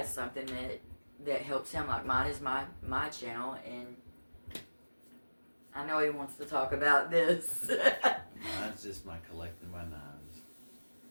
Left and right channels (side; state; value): both; inverted; correlation -1.00